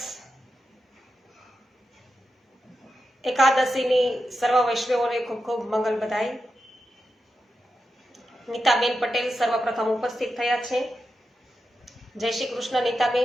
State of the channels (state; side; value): normal; both; correlation 0.89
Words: એકાદશીની સર્વ વૈષ્ણવોને ખૂબ ખૂબ મંગલ બધાઈ। નીતાબેન પટેલ સર્વપ્રથમ ઉપસ્થિત થયા છે। જય શ્રી કૃષ્ણ